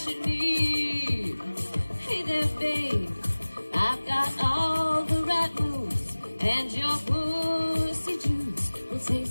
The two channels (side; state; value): both; inverted; correlation -1.00